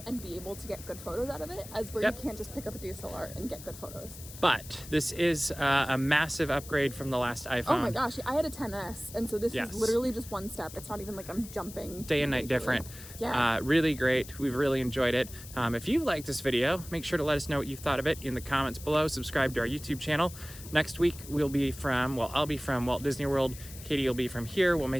and be able to get good photos out of it, as where you can't just pick up a DSLR and get good photos. But this is a massive upgrade from the last iPhone. Oh my gosh, I had a 10S, and so this is literally just one step. It's not even like I'm jumping. Day and night different. Really great. We've really enjoyed it. If you liked this video, make sure to let us know what you thought of it in the comments below. Subscribe to our YouTube channel. Next week, I'll be from Walt Disney World. Katie will be from here. We'll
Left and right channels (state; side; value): noise; left; hiss, 15 dB below the sound